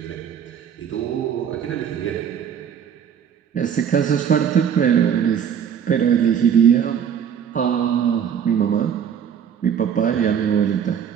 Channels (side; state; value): left; quieter; 8.2 dB